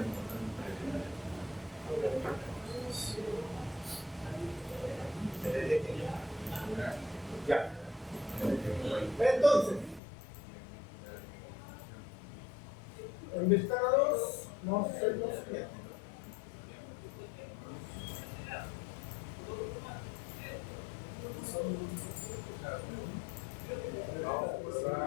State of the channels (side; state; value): right; drops out; at 10.0 s